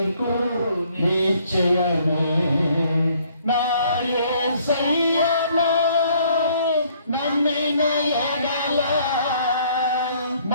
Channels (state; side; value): inverted; both; correlation -0.63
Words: నిశ్చయమే. నా యేసయ్యను నమ్మిన ఎడల